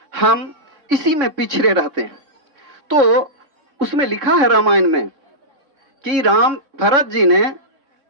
हम इसी में पिछड़े रहते हैं। तो उसमें लिखा है रामायण में कि राम भरत जी ने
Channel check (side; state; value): left; late; 3.7 ms